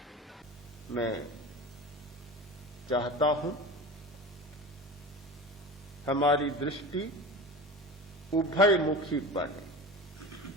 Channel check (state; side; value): normal; both; correlation 0.32